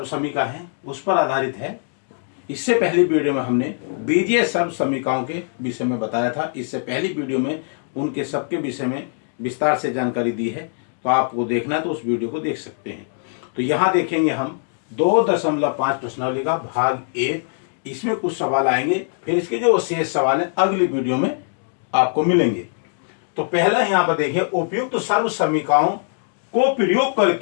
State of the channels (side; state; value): right; silent; digital silence